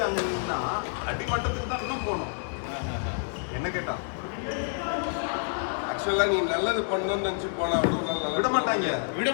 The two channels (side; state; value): right; silent; digital silence